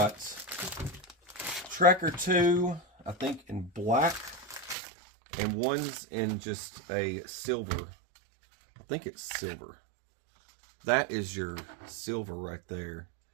Tracker 2, I think in black, and one's in just a silver. I think it's silver. That is your silver right there.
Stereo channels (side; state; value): left; drops out; at 4.8 s